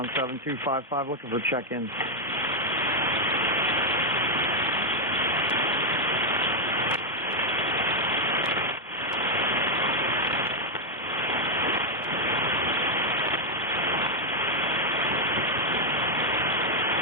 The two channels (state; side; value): normal; both; correlation 0.00